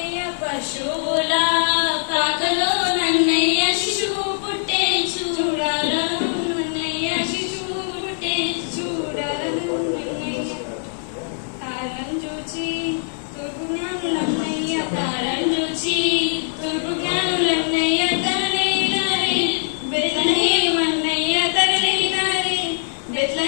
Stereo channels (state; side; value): silent; right; digital silence